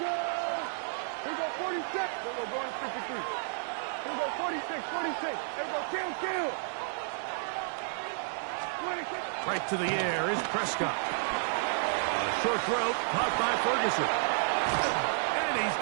Here we go, 46. Here we go, going to 53. Here we go, 46, 46. Here we go, kill. 26. Right to the air is Prescott. A short throw, caught by Ferguson. And he's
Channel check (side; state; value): left; silent; 57 dB below the other